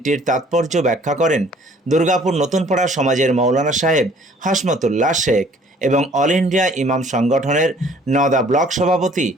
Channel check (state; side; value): normal; both; correlation 0.56